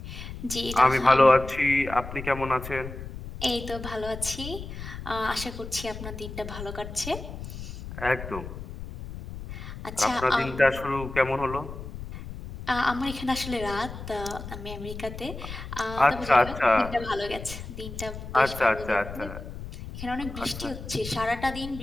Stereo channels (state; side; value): noise; left; rumble, 10 dB below the sound